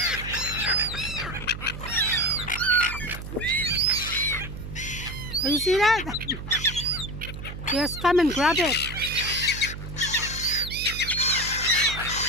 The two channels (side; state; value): right; noise; hum, 9 dB below the sound